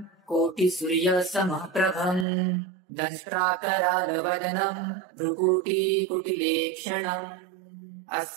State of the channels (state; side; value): drops out; left; at 2.2 s